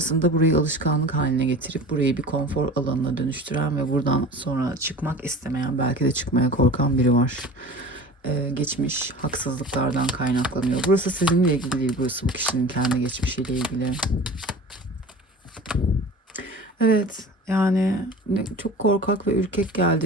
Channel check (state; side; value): normal; both; correlation 0.38